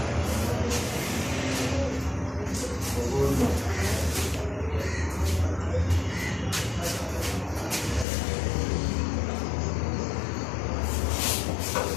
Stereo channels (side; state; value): right; drops out; at 8.1 s